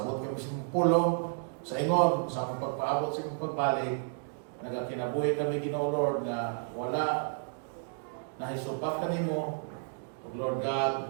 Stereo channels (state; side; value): silent; left; digital silence